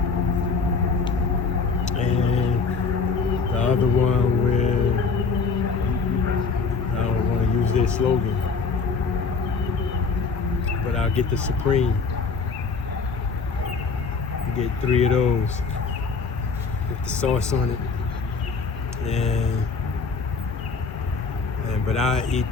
And the other one where I don't want to use their slogan, but I'll get the Supreme. Get 3 of those with the sauce on it, but I eat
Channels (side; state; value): right; quieter; 4.7 dB